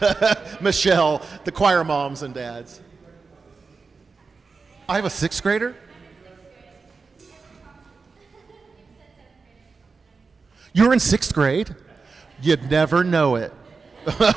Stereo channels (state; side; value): quieter; left; 4.6 dB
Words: Michelle, the choir moms and dads. I have a 6th grader? You're in 6th grade? You'd never know it.